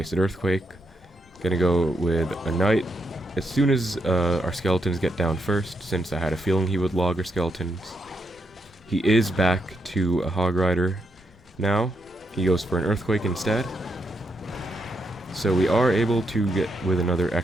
Earthquake. Going to go with a Knight as soon as our skeletons get down first, since I had a feeling he would log our skeletons. He is back to a Hog Rider now. He goes for an Earthquake instead. So we are able to get with another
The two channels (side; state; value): both; normal; correlation 0.80